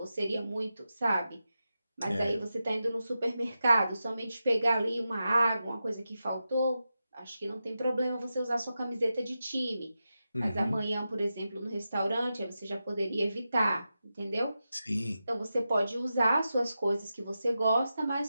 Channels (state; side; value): inverted; both; correlation -0.90